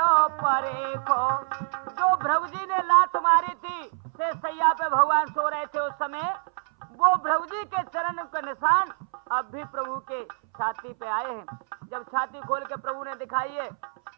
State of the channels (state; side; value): silent; left; 61 dB below the other